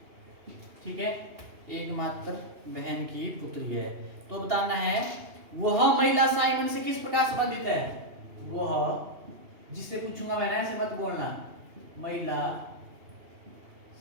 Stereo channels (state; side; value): late; left; 2.8 ms